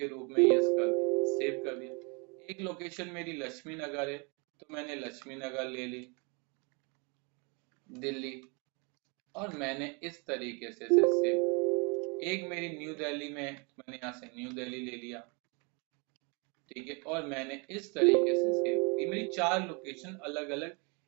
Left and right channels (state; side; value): quieter; left; 32.4 dB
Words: रूप में यस कर दिया, सेव कर दिया। एक लोकेशन मेरी लक्ष्मी नगर है, तो मैंने लक्ष्मी नगर ले ली दिल्ली, और मैंने इस तरीके से इसे सेव। एक मेरी न्यू दिल्ली में, मैंने यहाँ से न्यू दिल्ली ले लिया, ठीक है, और मैंने इस तरीके से सेव। ये मेरी 4 लोकेशन अलग अलग